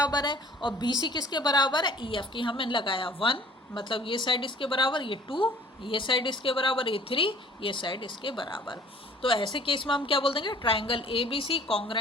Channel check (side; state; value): both; normal; correlation 0.53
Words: है, और बी सी किसके बराबर है, ई एफ की। हमें लगाया 1, मतलब ये साइड इसके बराबर, ये 2, ये साइड इसके बराबर, ये 3, ये साइड इसके बराबर। तो ऐसे केस में हम क्या बोल देंगे, triangle A B C